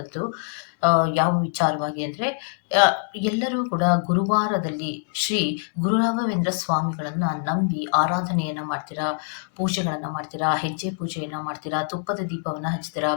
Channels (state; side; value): silent; right; digital silence